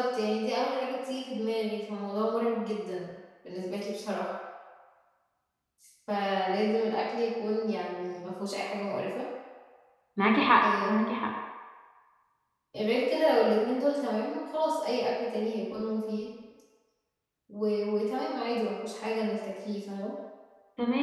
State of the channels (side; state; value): both; identical; correlation 1.00